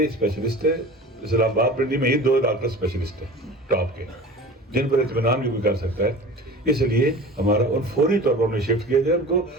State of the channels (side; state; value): both; normal; correlation 0.38